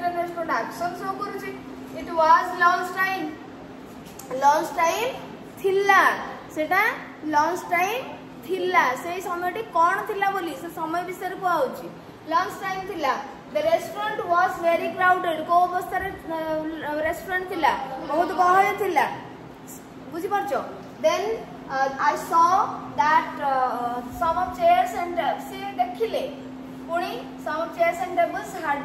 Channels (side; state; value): both; identical; correlation 1.00